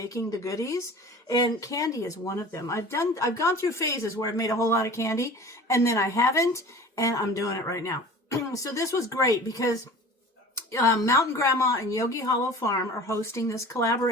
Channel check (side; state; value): both; normal; correlation 0.41